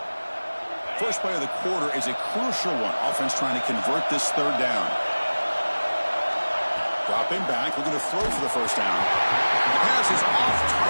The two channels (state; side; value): inverted; both; correlation -1.00